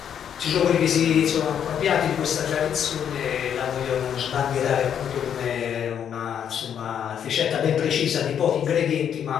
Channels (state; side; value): quieter; right; 8.7 dB